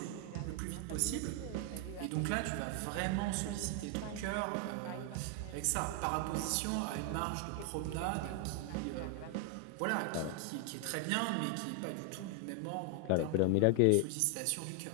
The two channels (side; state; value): both; different; correlation 0.01